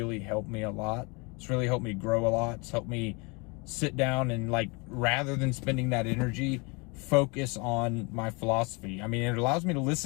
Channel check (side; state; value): right; quieter; 29.5 dB